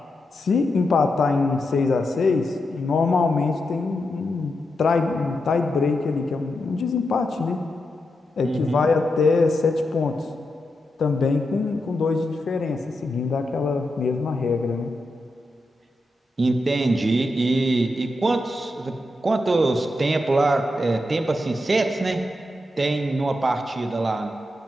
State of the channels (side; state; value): both; normal; correlation 0.86